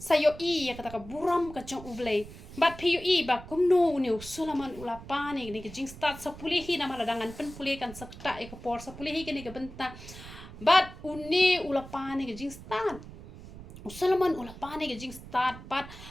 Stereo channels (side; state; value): right; noise; rumble, 15 dB below the sound